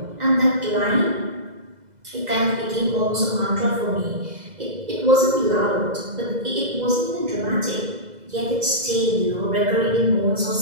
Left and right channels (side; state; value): left; late; 2.0 ms